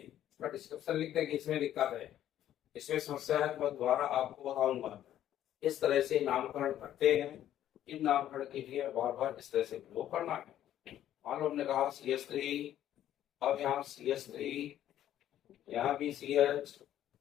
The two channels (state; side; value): quieter; right; 11.8 dB